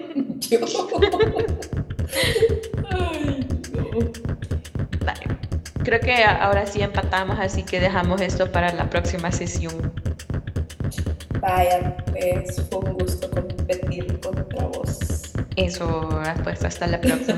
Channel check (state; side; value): identical; both; correlation 1.00